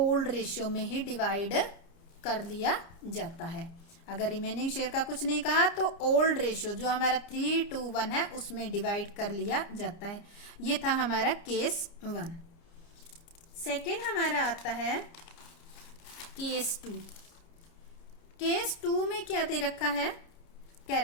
रेशियो में ही डिवाइड कर लिया जाता है। अगर रिमेनिंग शेयर का कुछ नहीं कहा तो ओल्ड रेशियो जो हमारा 3:1 है उसमें डिवाइड कर लिया जाता है। ये था हमारा केस 1। सेकेंड हमारा आता है केस 2। केस 2 में क्या दे रखा है? क्या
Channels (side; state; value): right; late; 29 ms